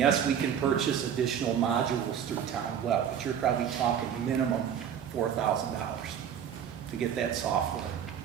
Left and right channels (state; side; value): quieter; left; 8.6 dB